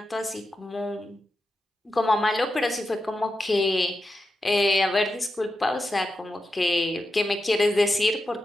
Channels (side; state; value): both; normal; correlation 0.89